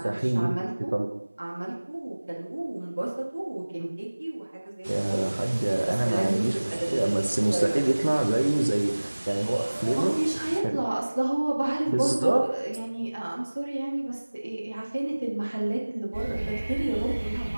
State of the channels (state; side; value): inverted; both; correlation -1.00